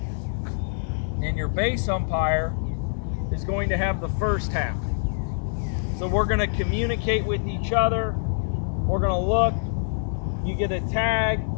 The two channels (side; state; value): right; silent; digital silence